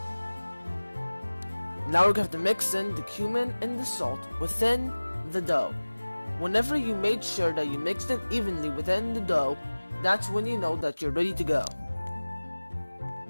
Now we have to mix in the cumin and the salt within the dough. Whenever you made sure that you mixed it evenly within the dough, that's when you know that you're ready to go.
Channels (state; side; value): inverted; both; correlation -1.00